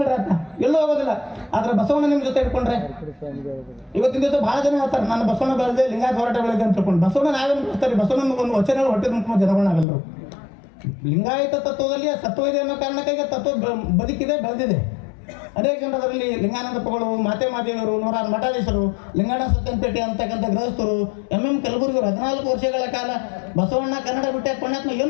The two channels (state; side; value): drops out; right; at 9.9 s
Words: ಆತ, ಎಲ್ಲೂ ಹೋಗೋದಿಲ್ಲ. ಆದ್ರೆ ಬಸವಣ್ಣ ನಿಮ್ಮ ಜೊತೆ ಇಟ್ಕೊಂಡ್ರೆ ಇವತ್ತಿನ ದಿವಸ ಭಾಳ ಜನ ಹೇಳ್ತಾರೆ ನಾನು ಬಸವಣ್ಣ ಬೆಳೆದೆ, ಲಿಂಗಾಯತ ಹೋರಾಟ ಬೆಳೆದೆ ಅಂತ ತಿಳ್ಕೊಂಡು. ಬಸವಣ್ಣ ನಾವೇನು ಮಾಡ್ತಾರೆ? ಬಸವಣ್ಣ ಒಂದು ವಚನ ಹೊಟ್ಟೆ ತುಂಬ ಜನಗಳಾಗಲ್ಲರು. ಲಿಂಗಾಯತ ತತ್ವದಲ್ಲಿ ಸತ್ವ ಇದೆ ಅನ್ನೋ ಕಾರಣಕ್ಕಾಗಿ ತತ್ವ ಬದುಕಿದೆ, ಬೆಳೆದಿದೆ. ಅನೇಕ ಜನರು ಅದರಲ್ಲಿ ಲಿಂಗಾನಂದಪ್ಪಗಳು, ಮಾತೆ ಮಾದೇವರು, 106 ಮಠಾಧೀಶರು, ಲಿಂಗಾಣ ಸತ್ಯಂಪೇಟೆ ಅಂತಕ್ಕಂಥ ಗೃಹಸ್ಥರು, MM ಕಲಬುರ್ಗಿಯವರು 14 ವರ್ಷಗಳ ಕಾಲ ಬಸವಣ್ಣ ಕನ್ನಡ ಬಿಟ್ಟೆ ಪುಣ್ಯಾತ್ಮ